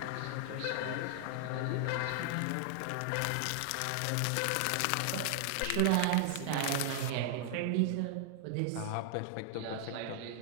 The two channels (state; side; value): different; both; correlation 0.00